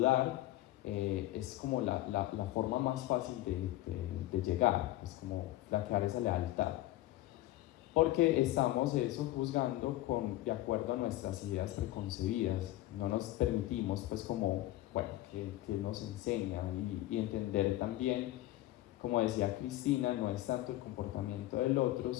es como la forma más fácil de llegar, es como flaquear esa lealtad, porque estamos juzgando de acuerdo a nuestras ideas preconcebidas. No nos permitimos que nos enseñan, y entender también, como decía Cristina, no es tanto el comportamiento del otro,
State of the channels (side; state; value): right; quieter; 16.0 dB